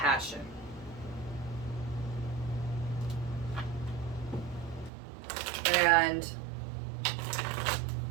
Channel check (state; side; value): drops out; left; at 4.9 s